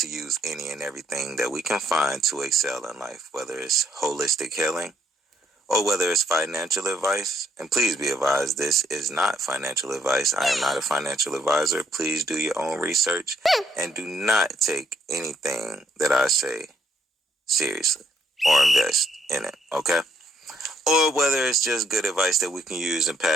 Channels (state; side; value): normal; both; correlation 0.70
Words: use any and everything that we can find to excel in life, whether it's holistic healing or whether it's financial advice. And please be advised, this is not financial advice. I am not a financial advisor. Please do your own research and do not take anything that I say seriously or invest in it, okay? Or whether it's just good advice that we can use and